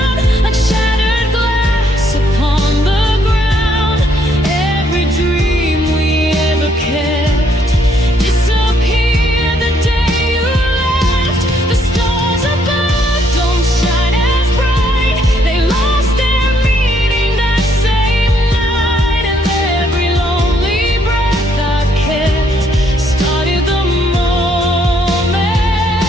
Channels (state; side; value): normal; both; correlation 0.70